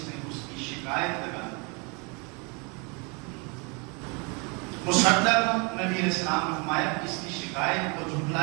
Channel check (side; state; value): left; quieter; 31.4 dB